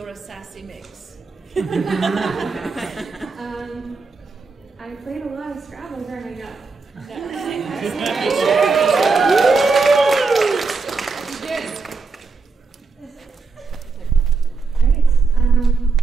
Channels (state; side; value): quieter; left; 4.3 dB